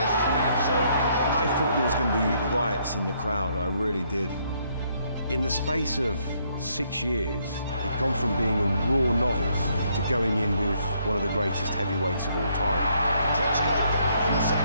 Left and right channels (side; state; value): both; inverted; correlation -0.71